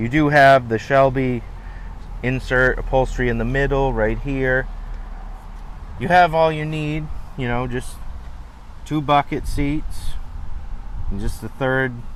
do have the Shelby insert upholstery in the middle right here. You have all you need, you know, just 2 bucket seats and just the third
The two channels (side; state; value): both; identical; correlation 1.00